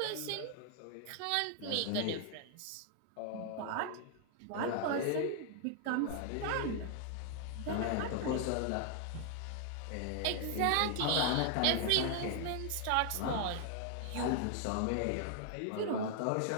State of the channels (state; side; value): different; both; correlation 0.00